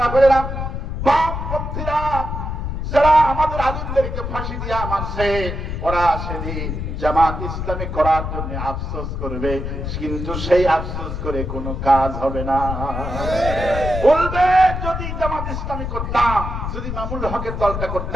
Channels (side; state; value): left; noise; rumble, 4 dB below the sound